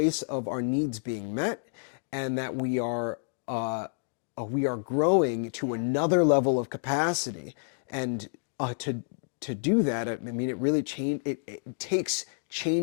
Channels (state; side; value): silent; right; digital silence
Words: of our needs being met, and that we are growing to another level of capacity. And to do that, I mean, it really it takes